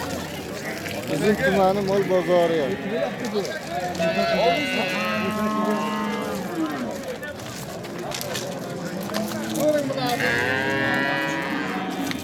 Bizim tumanı mol bozarı yok.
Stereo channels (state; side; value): identical; both; correlation 1.00